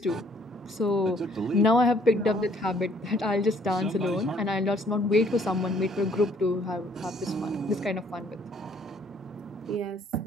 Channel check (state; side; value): normal; both; correlation 0.62